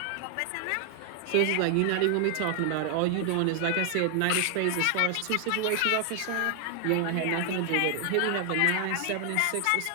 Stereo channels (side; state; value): both; different; correlation 0.00